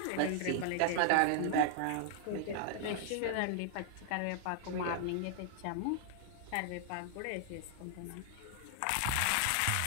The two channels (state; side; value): different; both; correlation 0.00